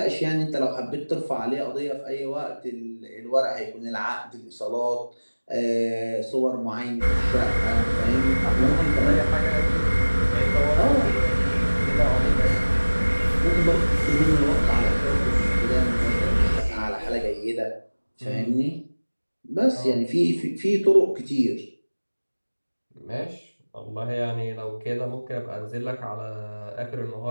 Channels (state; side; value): inverted; both; correlation -1.00